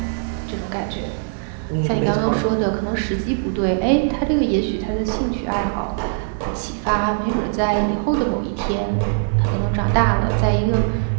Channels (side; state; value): left; silent; digital silence